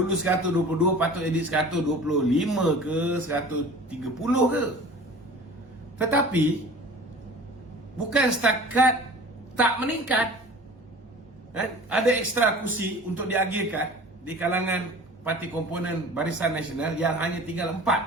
122, patut jadi 125 ke 130 ke. Tetapi bukan setakat tak meningkat, ada ekstra kursi untuk diagihkan di kalangan parti komponen Barisan Nasional yang hanya tinggal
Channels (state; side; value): normal; both; correlation 0.42